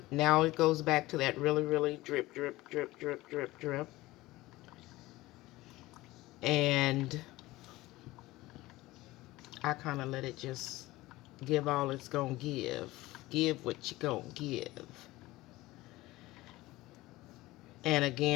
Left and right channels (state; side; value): quieter; right; 18.7 dB